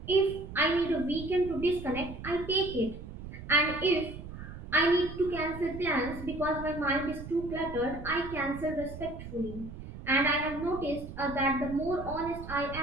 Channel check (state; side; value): noise; right; rumble, 11 dB below the sound